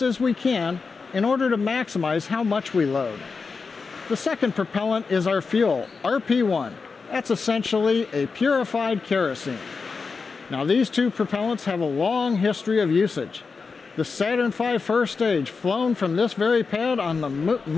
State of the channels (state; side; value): quieter; right; 4.8 dB